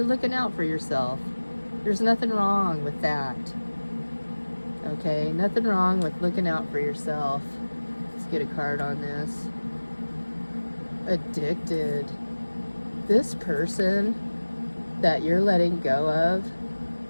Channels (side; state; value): both; inverted; correlation -1.00